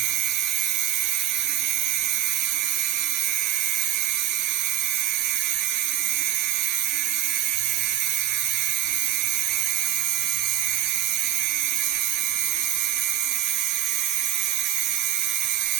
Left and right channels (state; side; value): quieter; left; 11.7 dB